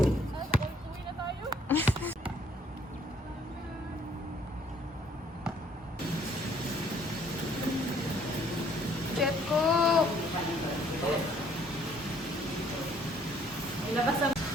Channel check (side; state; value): both; normal; correlation 0.62